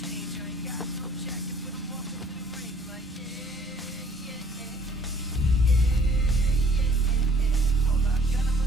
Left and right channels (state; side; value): normal; both; correlation 0.57